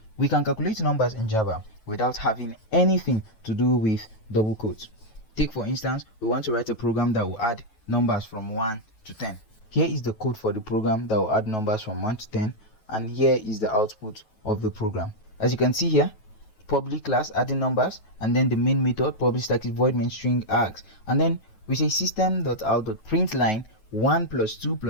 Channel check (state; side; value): late; right; 9.2 ms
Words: We can calculate numbers in Java without having anything to do with double quotes. Take for instance, we want to write a program that will add numbers from 1 to 10. Here is the code for the program that will add numbers from 1 to 10, and here is the output of the program. As you can see here, public class adding numbers, and then the main method public static void main string args, and then we say system.out.println 1 plus 2